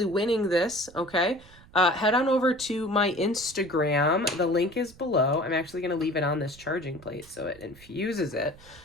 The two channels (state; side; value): noise; right; rumble, 23 dB below the sound